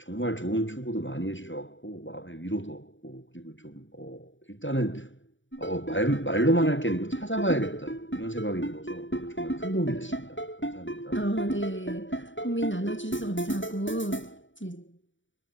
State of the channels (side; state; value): right; late; 0.55 ms